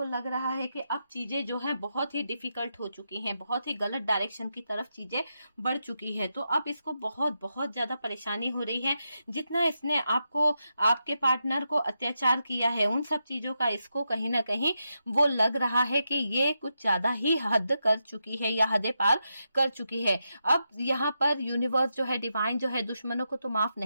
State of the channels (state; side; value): inverted; both; correlation -0.86